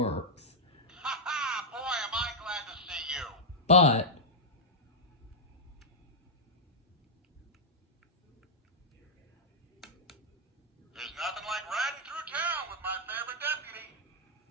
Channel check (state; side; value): normal; both; correlation -0.06